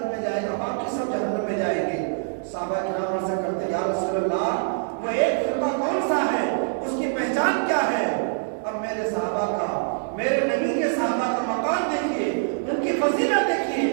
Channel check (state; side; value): silent; left; digital silence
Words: میں جائے گا, باقی سب جہنم میں جائیں گے. صحابہ کرام عرض کرتے ہیں یا رسول اللہ وہ ایک فرقہ کون سا ہے, اس کی پہچان کیا ہے. اب میرے صحابہ کا, میرے نبی کے صحابہ کا مقام دیکھیے, ان کی فضیلت دیکھیے.